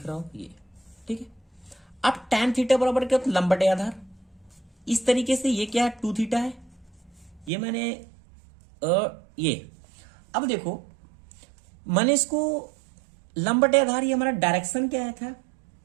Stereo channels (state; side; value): drops out; left; at 7.5 s